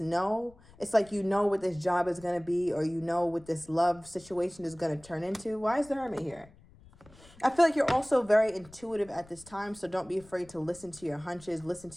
know. It's like you know what this job is going to be, or you know what this love situation is going to turn into. Why is the Hermit here? I feel like you're also very intuitive at this time, so don't be afraid to listen to your hunches, listen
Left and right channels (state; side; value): noise; left; rumble, 24 dB below the sound